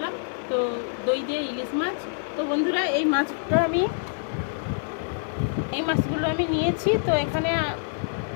তো দই দিয়ে ইলিশ মাছ। তো বন্ধুরা, এই মাছগুলো আমি নিয়েছি। তো এখানে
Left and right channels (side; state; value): right; silent; digital silence